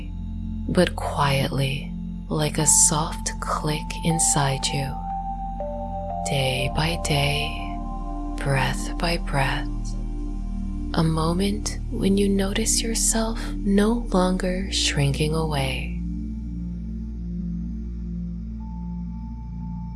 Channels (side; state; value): both; identical; correlation 1.00